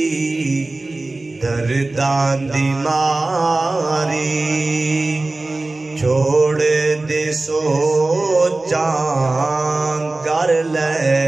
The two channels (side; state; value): left; quieter; 3.1 dB